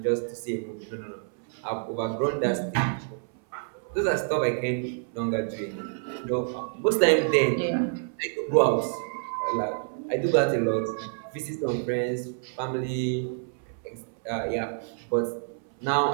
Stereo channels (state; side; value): silent; left; 59 dB below the other